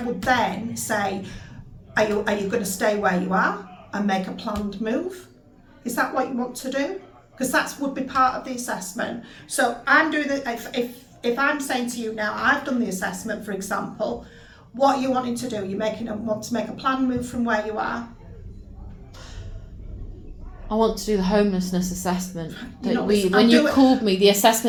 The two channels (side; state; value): both; identical; correlation 1.00